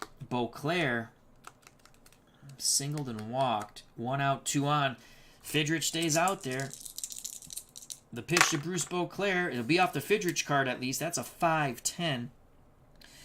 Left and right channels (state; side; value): identical; both; correlation 1.00